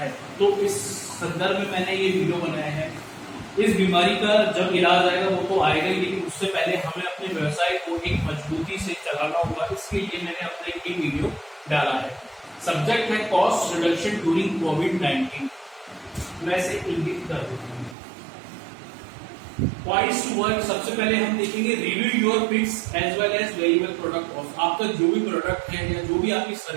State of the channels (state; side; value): drops out; left; at 17.9 s